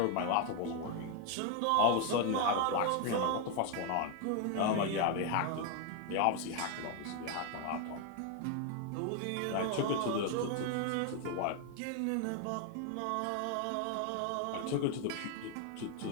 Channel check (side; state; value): both; different; correlation 0.01